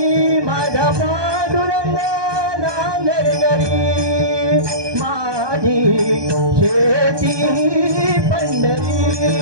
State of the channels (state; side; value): late; left; 1.2 ms